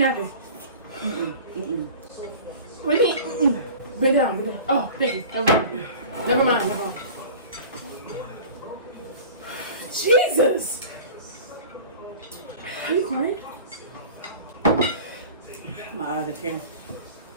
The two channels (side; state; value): both; inverted; correlation -0.39